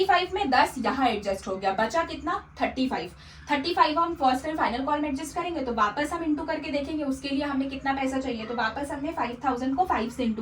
में 10 यहाँ एडजस्ट हो गया, बचा कितना 35 हम फर्स्ट एंड फाइनल कॉल में एडजस्ट करेंगे, तो वापस हम इंटू करके देखेंगे उसके लिए हमें कितना पैसा चाहिए, तो वापस हमने 5,000 को 5 से इंटू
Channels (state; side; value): identical; both; correlation 1.00